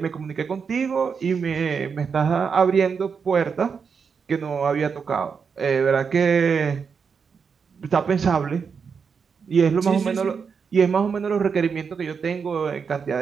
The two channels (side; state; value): left; quieter; 6.0 dB